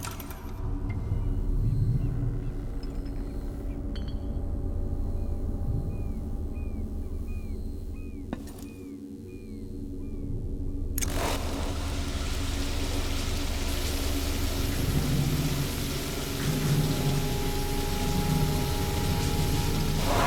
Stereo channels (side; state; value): both; identical; correlation 1.00